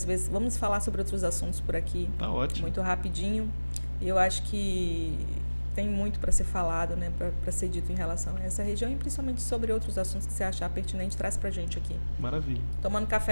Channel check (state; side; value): inverted; both; correlation -1.00